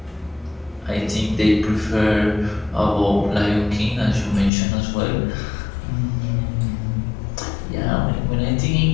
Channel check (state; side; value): drops out; right; at 4.5 s